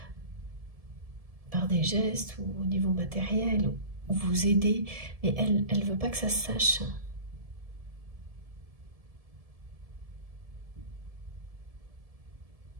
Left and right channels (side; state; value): left; late; 1.7 ms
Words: par des gestes ou au niveau matériel, ou vous aider, mais elle ne veut pas que ça se sache.